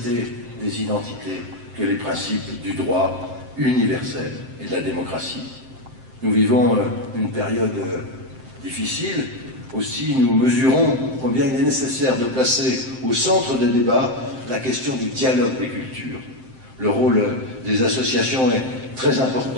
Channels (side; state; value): left; late; 7.7 ms